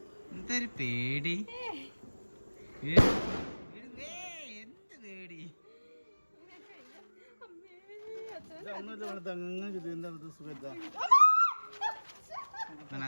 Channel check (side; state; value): both; inverted; correlation -1.00